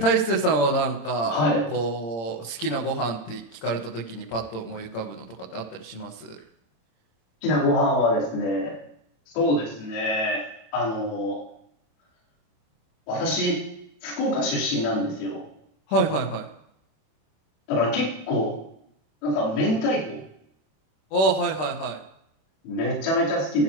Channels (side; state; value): right; late; 26 ms